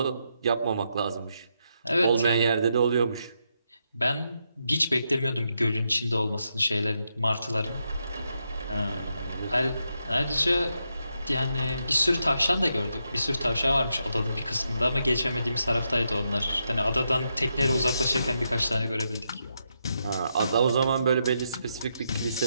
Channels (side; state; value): both; inverted; correlation -0.82